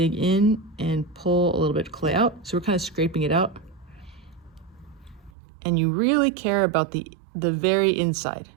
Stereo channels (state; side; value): drops out; left; at 5.3 s